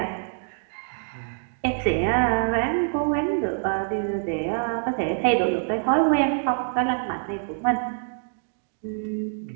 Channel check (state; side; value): silent; left; digital silence